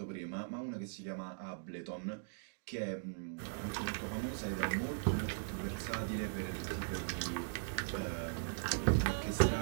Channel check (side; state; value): left; silent; digital silence